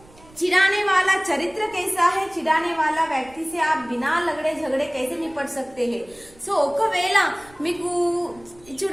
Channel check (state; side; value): noise; right; rumble, 26 dB below the sound